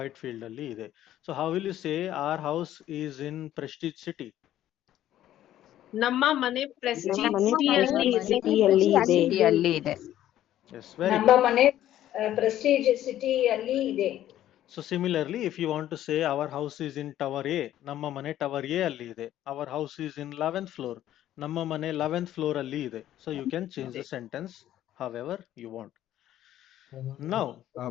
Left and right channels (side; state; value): right; quieter; 12.6 dB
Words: ಅಲ್ಲಿ ಇದೆ. So how will you say our house is in Prestige City? ನಮ್ಮ ಮನೆ ಪ್ರೆಸ್ಟೀಜ್ ನಮ್ಮ ಮನೆ ಸಿಟಿಯಲ್ಲಿ ಇದೆ. ಸಿಟಿಯಲ್ಲಿ ಇದೆ. ಸಿಟಿಯಲ್ಲಿ ಇದೆ. Yes, very ನಮ್ಮ good. ಮನೆ ಪ್ರೆಸ್ಟೀಜ್ ಸಿಟಿ ಅಲ್ಲಿ ಇದೆ. So similarly, if you want to say our house is in Tower A, ನಮ್ಮ ಮನೆ Tower A ಅಲ್ಲಿ ಇದೆ. Our house is in 11th floor. ನಮ್ಮ ಮನೆ 11th floor ಅಲ್ಲಿ ಇದೆ. So you can change the sentence however you want. Now,